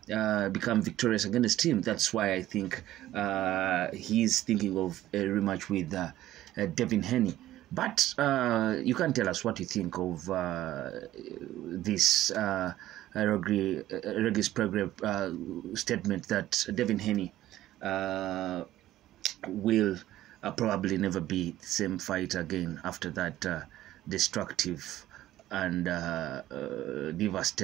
become victorious against him. That's why I think he's thinking of a rematch with Devin Haney. But you can tell us what you think of this Regis Prograis statement that Devin Haney will probably never be the same fighter again after that destructive and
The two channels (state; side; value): quieter; left; 14.3 dB